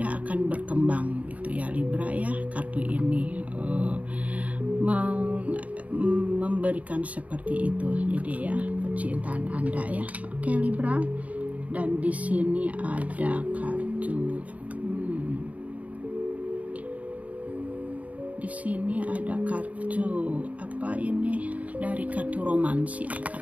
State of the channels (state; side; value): late; left; 0.070 ms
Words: akan berkembang gitu ya Libra ya. Kartu ini memberikan seperti itu. Jadi ya, percintaan Anda ya. Oke Libra. Dan di sini ada kartu di sini ada kartu apa ini, dari kartu romans ya,